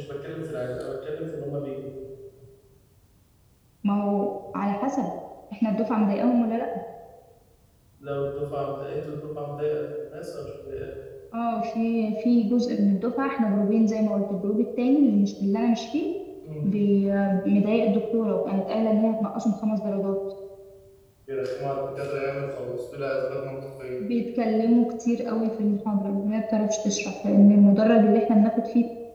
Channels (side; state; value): both; identical; correlation 1.00